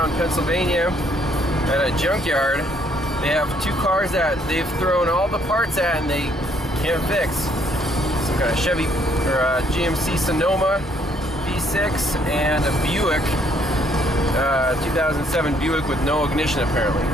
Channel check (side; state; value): both; normal; correlation 0.67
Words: Pennsylvania at a junkyard. They have two cars that they've thrown all the parts at and they can't fix. Some kind of Chevy or a GMC Sonoma V6 and a Buick, 2007 Buick with no ignition apparently.